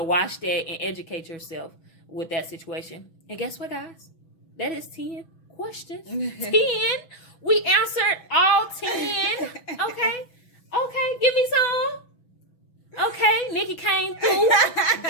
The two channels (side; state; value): right; late; 6.1 ms